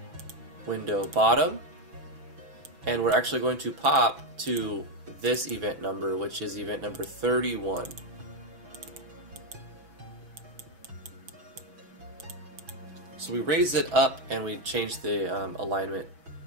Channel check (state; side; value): late; left; 6.1 ms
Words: window bottom. And we're actually going to pop to this event number, which is event number 31. So we raise it up and we change the alignment.